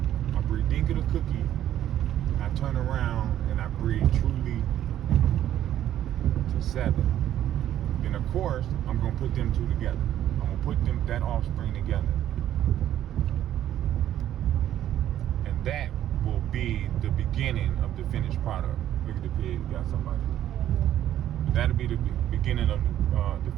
I breed Dinka to Cookie. I turn around and I breed Truly to 7. Then of course I'm gonna put them two together. I'm gonna put that offspring together. And that will be the beginning of the finished product. Look at the pig, got somebody. But that'll be the beginning of the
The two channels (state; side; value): quieter; left; 11.7 dB